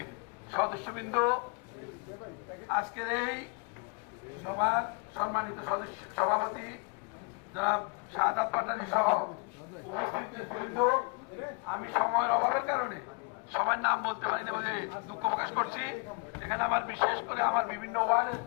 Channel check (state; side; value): quieter; right; 34.0 dB